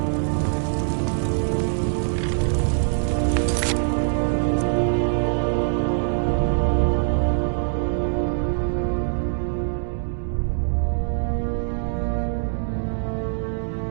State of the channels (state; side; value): silent; left; digital silence